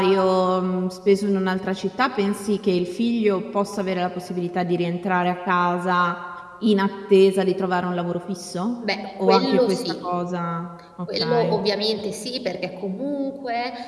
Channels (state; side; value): identical; both; correlation 1.00